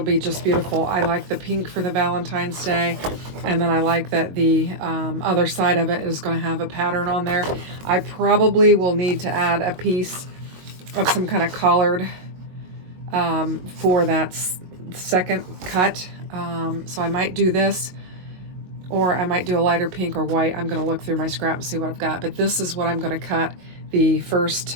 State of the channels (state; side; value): late; left; 22 ms